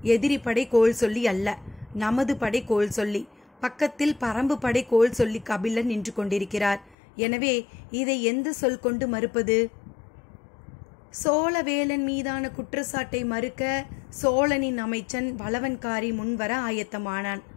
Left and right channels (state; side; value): drops out; right; at 7.0 s